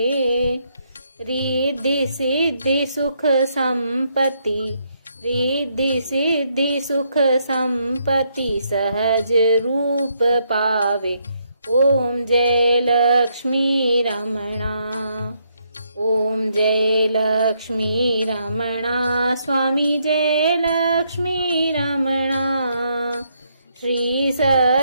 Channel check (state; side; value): inverted; both; correlation -0.75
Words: रिद्धि सिद्धि सुख संपत्ति, रिद्धि सिद्धि सुख संपत्ति सहज रूप पावे। ओम जय लक्ष्मी रमणा। ओम जय लक्ष्मी रमणा। स्वामी जय लक्ष्मी रमणा। श्री